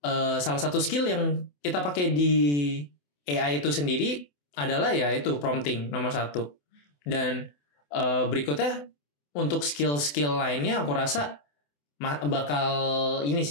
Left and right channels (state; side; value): late; right; 28 ms